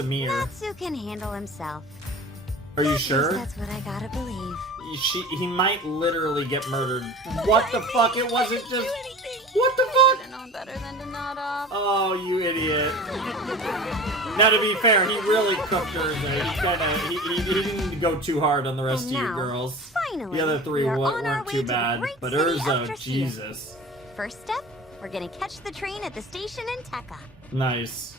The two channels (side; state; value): both; normal; correlation 0.38